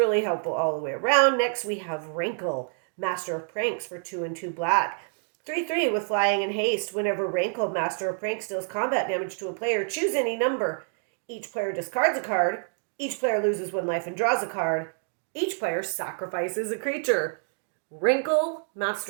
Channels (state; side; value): silent; left; 60 dB below the other